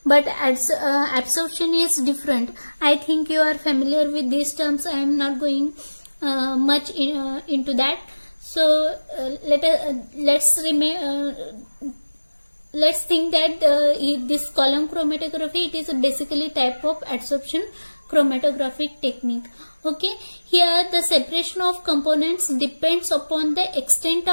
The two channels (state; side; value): inverted; both; correlation -1.00